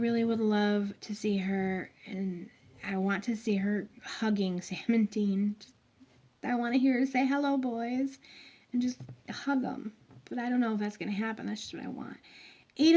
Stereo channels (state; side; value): identical; both; correlation 1.00